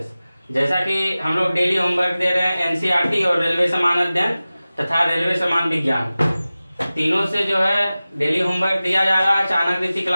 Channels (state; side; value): inverted; both; correlation -0.97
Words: जैसा कि हम लोग डेली होमवर्क दे रहे हैं एनसीईआरटी और रेलवे समान अध्ययन तथा रेलवे समान विज्ञान, तीनों से जो है डेली होमवर्क दिया जा रहा है। Chanakya Niti